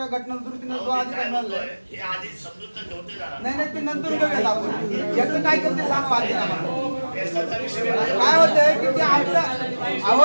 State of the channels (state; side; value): inverted; both; correlation -1.00